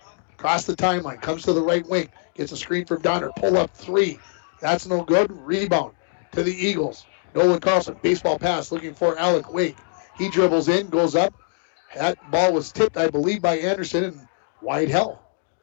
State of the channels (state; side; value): silent; right; digital silence